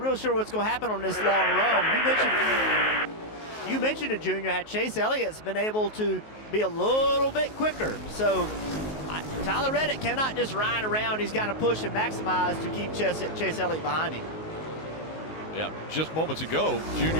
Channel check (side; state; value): right; late; 19 ms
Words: sure what's going to happen on this long run. You mentioned it, Junior, had Chase Elliott's been able to be a little bit quicker. So Tyler Reddick cannot just ride around. He's got to push and maximize to keep Chase Elliott behind him. Yeah, just moments ago, Junior,